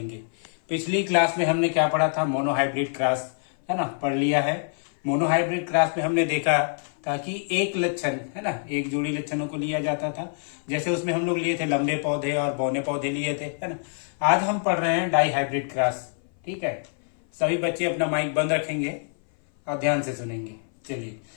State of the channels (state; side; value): silent; right; 58 dB below the other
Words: पिछली क्लास में हमने क्या पढ़ा था, मोनो हाइब्रिड क्रॉस है ना, पढ़ लिया है। मोनो हाइब्रिड क्रॉस में हमने देखा था कि एक लक्षण है ना, एक जोड़ी लक्षणों को लिया जाता था। जैसे उसमें हम लोग लिए थे लंबे पौधे और बौने पौधे लिए थे, है ना। आज हम पढ़ रहे हैं डाई हाइब्रिड क्रॉस। ठीक है, सभी बच्चे अपना माइक बंद रखेंगे और ध्यान से सुनेंगे। चलिए